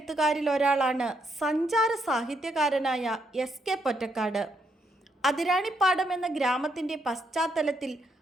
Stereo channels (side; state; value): both; normal; correlation 0.76